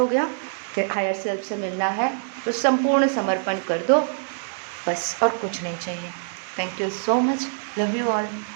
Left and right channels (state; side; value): silent; left; digital silence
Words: गया कि हायर सेल्फ से मिलना है तो संपूर्ण समर्पण कर दो, बस, और कुछ नहीं चाहिए। Thank you so much, love you all,